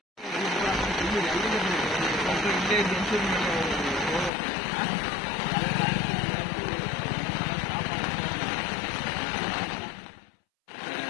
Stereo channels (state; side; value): drops out; right; at 4.3 s